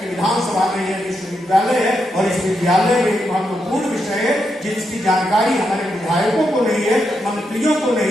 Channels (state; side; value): normal; both; correlation 0.83